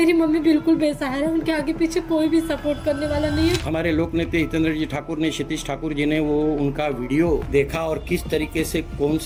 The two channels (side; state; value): both; identical; correlation 1.00